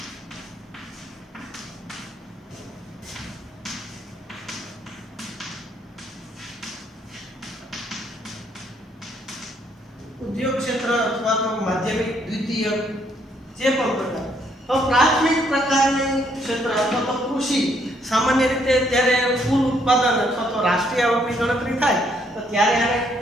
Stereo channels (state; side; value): normal; both; correlation 0.70